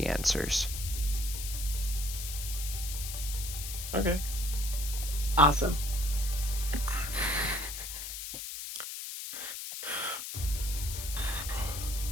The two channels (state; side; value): noise; left; hiss, 6 dB below the sound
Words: answers. Okay. Awesome.